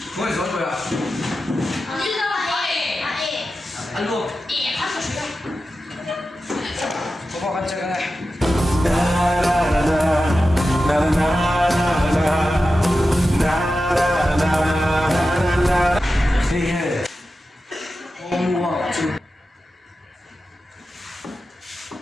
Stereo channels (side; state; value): both; normal; correlation 0.92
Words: Ngồi xuống rồi à? Ăn luôn. Có vào ăn chơi cái này. Hey, hey. Mua chứ.